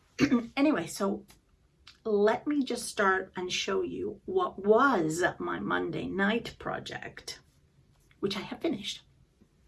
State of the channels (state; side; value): identical; both; correlation 1.00